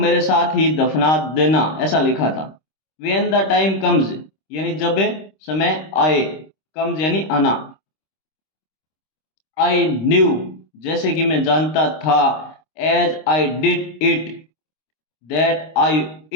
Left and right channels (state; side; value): late; right; 26 ms